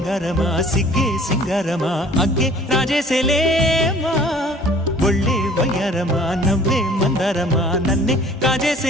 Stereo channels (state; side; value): normal; both; correlation 0.51